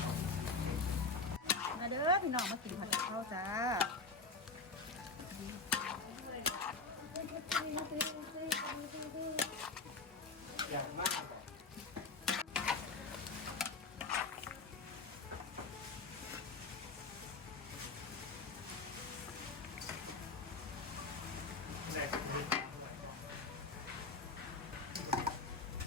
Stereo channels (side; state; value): right; quieter; 3.9 dB